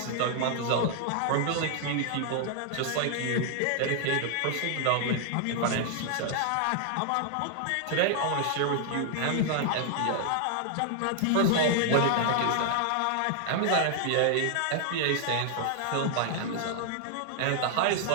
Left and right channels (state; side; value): different; both; correlation 0.00